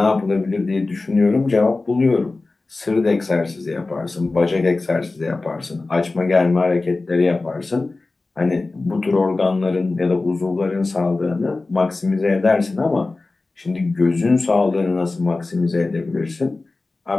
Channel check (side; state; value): right; quieter; 3.4 dB